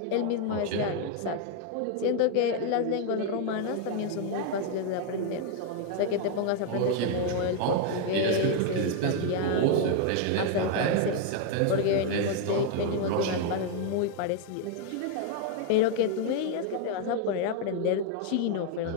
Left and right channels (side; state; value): both; different; correlation 0.00